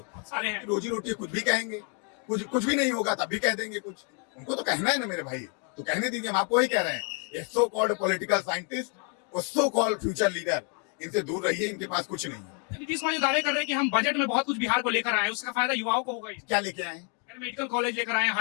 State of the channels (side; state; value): right; quieter; 37.7 dB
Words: सारे हैं। रोजी रोटी कुछ भी कहेंगे, कुछ भी नहीं होगा तब भी कह देंगे कुछ। उनको तो कहना है ना मेरे भाई, तो कहने दीजिए। हम आपको ही कह रहे हैं, ये सो कॉल्ड पॉलिटिकल साइंटिस्ट और सो कॉल्ड फ्यूचर लीडर, इनसे दूर रहिए, इनके पास कुछ नहीं है। नीतीश कुमार दावे कर रहे हैं कि हम बजट में बहुत कुछ बिहार को लेकर आए, उसका फायदा युवाओं को होगा। क्या लेके आए? मेडिकल कॉलेज लेकर आए,